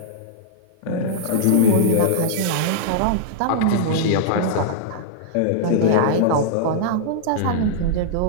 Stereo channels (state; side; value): different; both; correlation -0.02